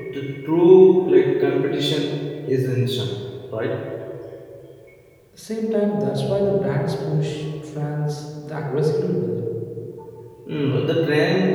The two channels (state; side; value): identical; both; correlation 1.00